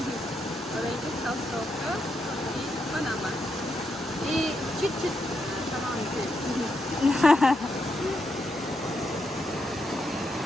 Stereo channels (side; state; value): both; normal; correlation 0.81